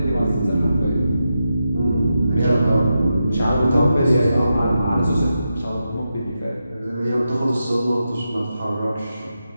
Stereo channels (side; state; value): both; inverted; correlation -0.88